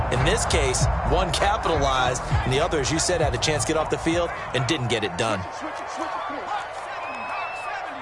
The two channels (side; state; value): both; identical; correlation 1.00